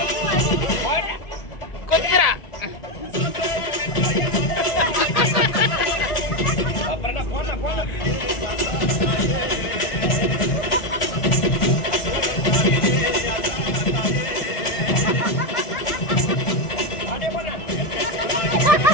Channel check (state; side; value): late; right; 1.8 ms